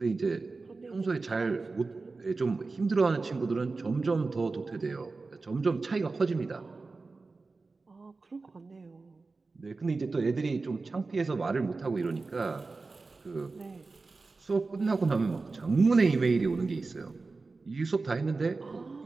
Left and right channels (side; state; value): left; quieter; 3.9 dB